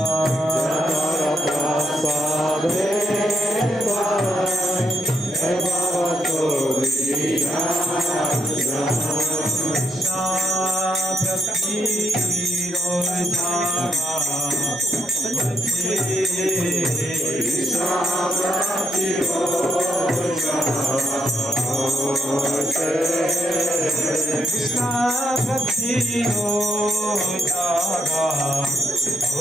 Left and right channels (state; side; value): normal; both; correlation 0.78